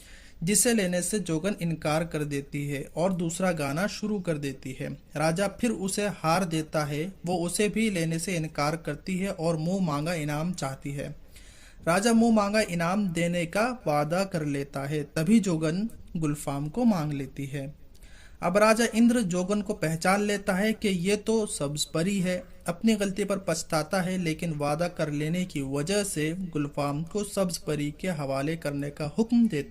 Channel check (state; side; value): identical; both; correlation 1.00